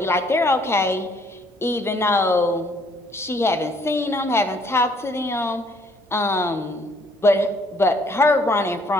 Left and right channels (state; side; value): normal; both; correlation 0.64